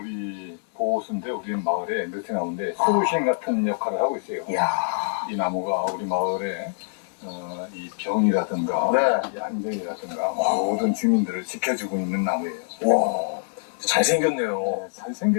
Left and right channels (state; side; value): silent; right; digital silence